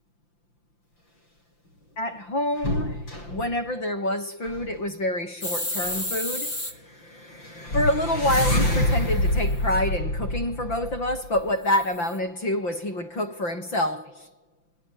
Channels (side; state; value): right; late; 5.8 ms